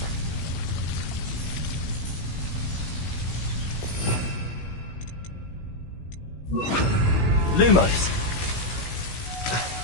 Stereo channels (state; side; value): late; right; 16 ms